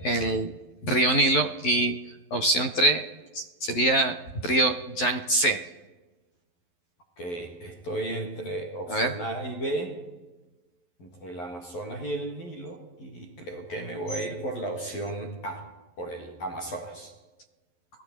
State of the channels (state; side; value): late; right; 11 ms